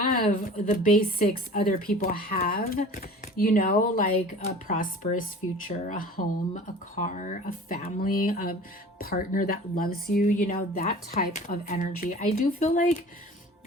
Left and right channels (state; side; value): normal; both; correlation 0.42